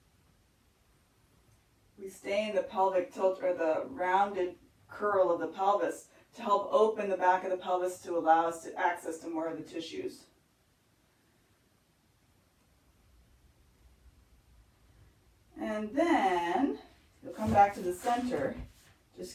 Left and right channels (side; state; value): both; identical; correlation 1.00